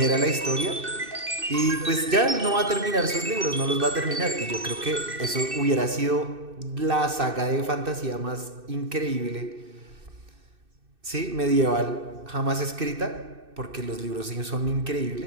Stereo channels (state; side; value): late; left; 2.6 ms